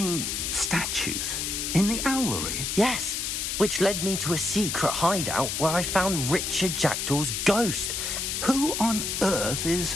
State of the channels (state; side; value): noise; left; hiss, 2 dB below the sound